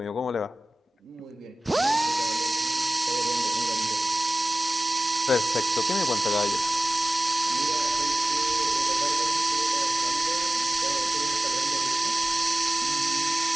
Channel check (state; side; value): normal; both; correlation 0.96